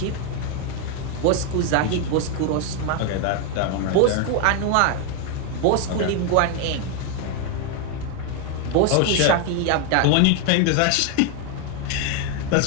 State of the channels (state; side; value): different; both; correlation 0.01